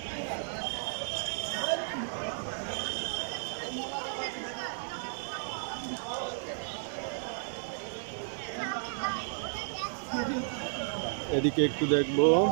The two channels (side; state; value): left; silent; digital silence